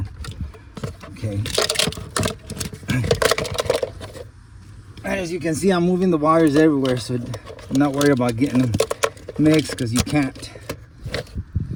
Okay. And as you can see, I'm moving the wires everywhere, so I'm not worried about getting them mixed, because you can't.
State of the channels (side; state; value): both; identical; correlation 1.00